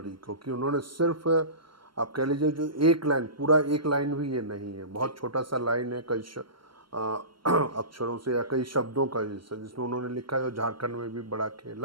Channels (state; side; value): late; left; 0.73 ms